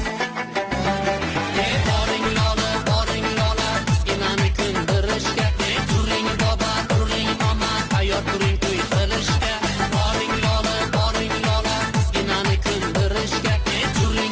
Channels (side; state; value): both; identical; correlation 1.00